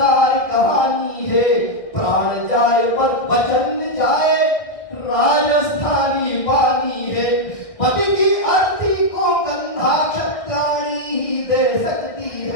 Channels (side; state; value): right; late; 1.6 ms